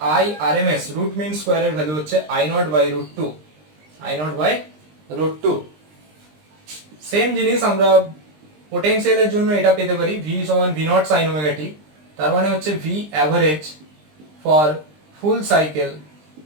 I R M S root mean স্কোয়ারের ভ্যালু হচ্ছে I0/√2, I0/√2। সেম জিনিস আমরা পোটেনশিয়ালের জন্য এটা পেতে পারি, V সমান V not sine omega t, তার মানে হচ্ছে V average for full cycle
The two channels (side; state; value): left; late; 20 ms